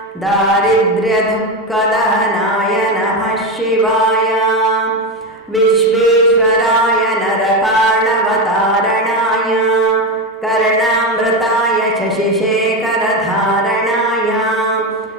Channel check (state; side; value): normal; both; correlation 0.15